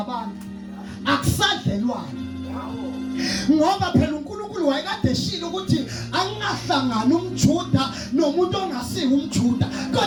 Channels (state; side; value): identical; both; correlation 1.00